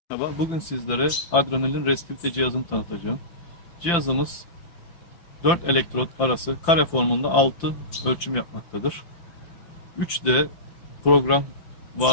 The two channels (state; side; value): late; right; 5.9 ms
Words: Merhaba, bugün sizlere adrenalin restivite cihazını tanıtacağım. Cihazımız 4 elektrot arası kare formunda 6 ölçüm yapmaktadır. 3D program